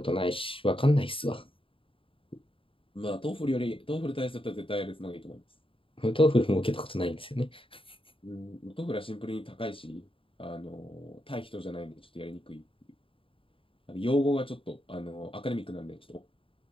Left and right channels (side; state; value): right; late; 0.26 ms